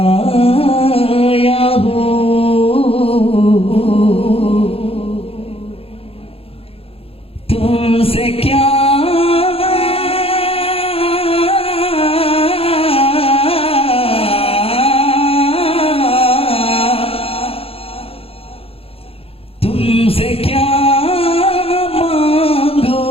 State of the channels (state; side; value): late; right; 0.28 ms